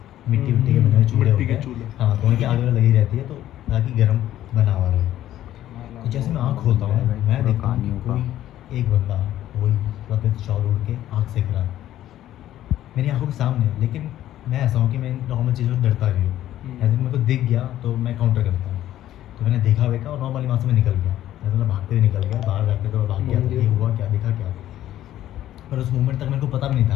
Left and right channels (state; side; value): quieter; right; 12.9 dB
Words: मिट्टी के बने हुए चूल्हे होते हैं। हाँ, तो उनकी आग वगैरह लगी रहती है तो ताकि गर्म बना हुआ रहे। तो जैसे मैं आँख खोलता हूँ मैं देखता हूँ कि कोई एक बंदा वही सफ़ेद शॉल ओढ़ के आँख सेक रहा है मेरी आंखों के सामने। लेकिन मैं ऐसा हूँ कि मैं नॉर्मल चीज़ों से डरता भी हूँ, ऐसे मेरे को दिख गया तो मैं काउंटर करता हूँ। तो मैंने देखा वेखा और नॉर्मली वहाँ से मैं निकल गया, ऐसे मैं भागते हुए निकल गया, बाहर जाके तो भाग गया ये हुआ क्या, देखा क्या। पर उस मोमेंट तक मेरे को पता भी नहीं